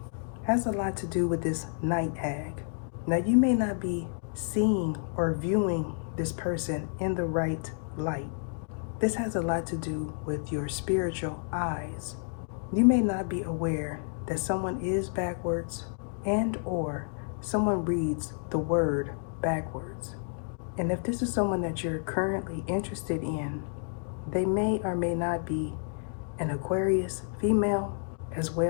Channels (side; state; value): right; silent; 58 dB below the other